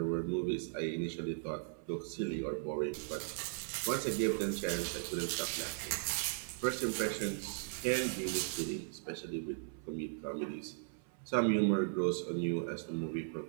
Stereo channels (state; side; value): silent; left; 53 dB below the other